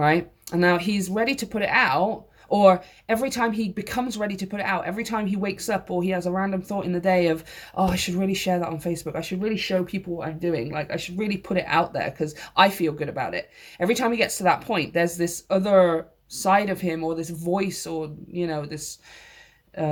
And now he's ready to put it out, or every time he becomes ready to put it out, every time he wakes up or he has a random thought in the day of, oh, I should really share that on Facebook. I should really show people what I'm doing. Like, I should really put it out there because I feel good about it. Every time he gets to that point, there's this other side of him or this voice or, this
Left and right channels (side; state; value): both; identical; correlation 1.00